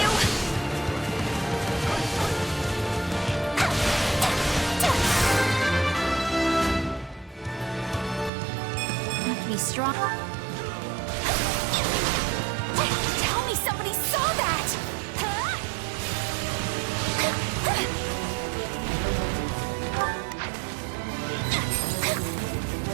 Make me strong. Tell me somebody saw that!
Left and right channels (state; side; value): drops out; left; at 8.3 s